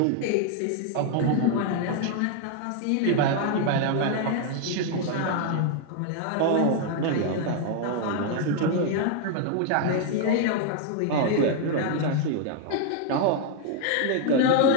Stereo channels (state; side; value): different; both; correlation 0.00